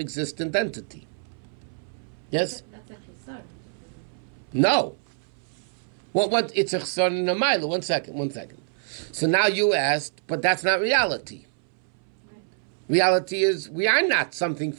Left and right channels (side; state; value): left; silent; 61 dB below the other